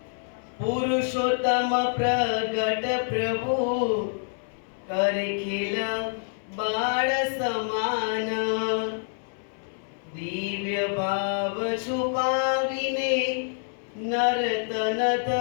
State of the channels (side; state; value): right; silent; 60 dB below the other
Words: પુરુષોત્તમ પ્રગટ પ્રભુ કરે ખેલ બાળ સમાન, દિવ્ય ભાવ છુપાવીને નર્તન